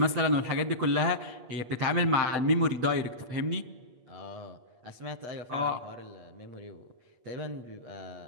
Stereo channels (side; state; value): left; late; 8.4 ms